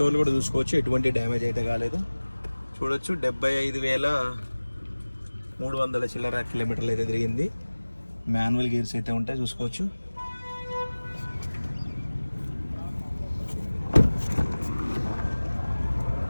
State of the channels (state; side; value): inverted; both; correlation -1.00